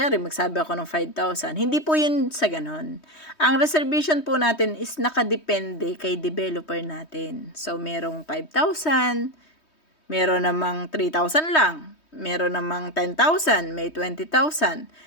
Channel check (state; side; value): late; right; 3.2 ms